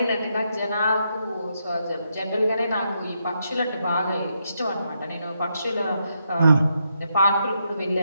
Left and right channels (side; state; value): both; inverted; correlation -0.81